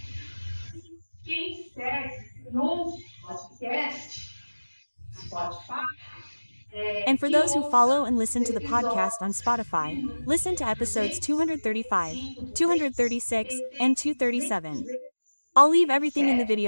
And for those who follow and listen to the podcast on Spotify, listen to episodes 235, 236, and 237. I'll leave everything in the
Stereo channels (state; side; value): inverted; both; correlation -1.00